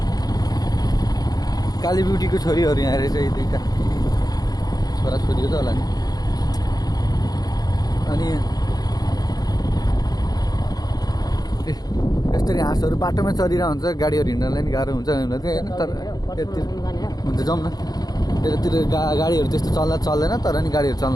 काली ब्युटीको छोरीहरू यहाँ रहेछ यी दुईवटा छोराछोरी हो त होला नि अनि यसरी हाँसहरू बाटोमा चलिरहेको हुन्छ गाडीहरू हिँड्नलाई नि गाह्रो हुन्छ होइन तर यतातिर हुन्छ जाउँ न यतातिर गाडीहरू त्यस्तो चल्दैन तर नि गाडीहरू चल्न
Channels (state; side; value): late; right; 0.19 ms